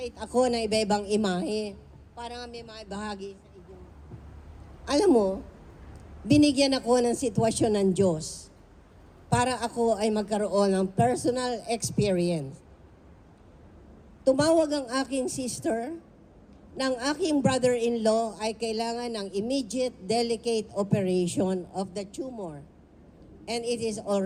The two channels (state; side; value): identical; both; correlation 1.00